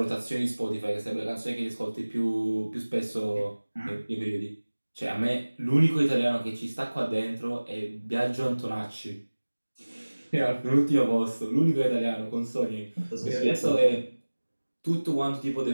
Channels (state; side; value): inverted; both; correlation -1.00